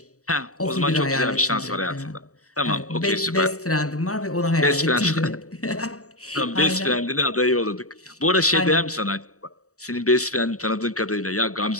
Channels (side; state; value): right; late; 0.65 ms